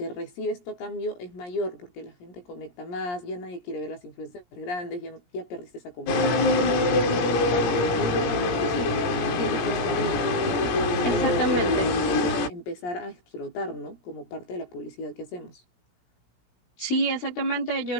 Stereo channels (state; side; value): late; right; 17 ms